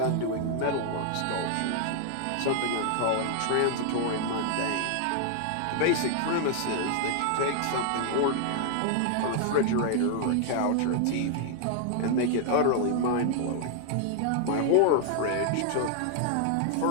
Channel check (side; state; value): both; different; correlation 0.00